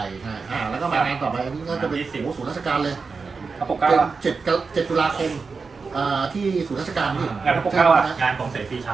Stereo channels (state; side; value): quieter; left; 4.7 dB